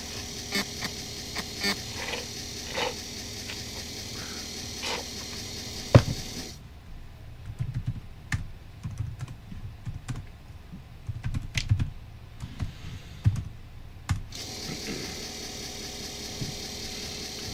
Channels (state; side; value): identical; both; correlation 1.00